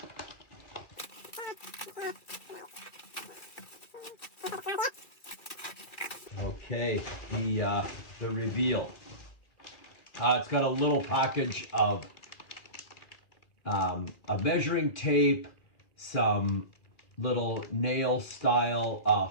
Okay, the reveal. It's got a little package of a measuring tape, some little nail style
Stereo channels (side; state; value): right; late; 2.4 ms